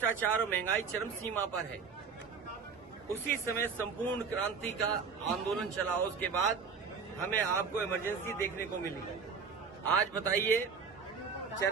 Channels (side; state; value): left; quieter; 5.6 dB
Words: और महंगाई चरम सीमा पर है। उसी समय संपूर्ण क्रांति का आंदोलन चला, उसके बाद हमें आपको इमरजेंसी देखने को मिली। आज बताइए,